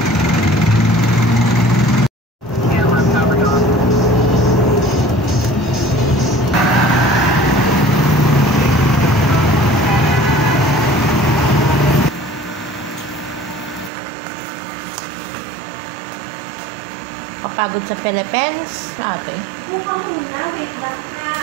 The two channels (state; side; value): drops out; left; at 13.9 s